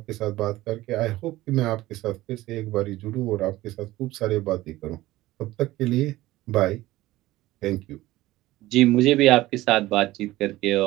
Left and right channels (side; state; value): left; quieter; 17.1 dB